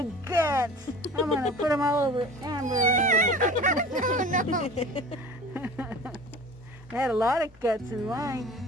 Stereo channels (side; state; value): both; normal; correlation 0.41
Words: guts. I'm going to put them all over Amber. No. I had a lot of guts in mine.